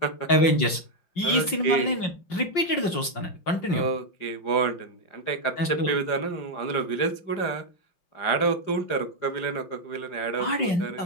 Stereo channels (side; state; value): right; late; 5.6 ms